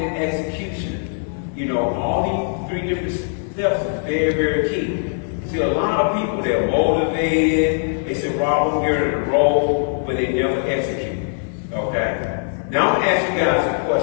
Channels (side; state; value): right; silent; digital silence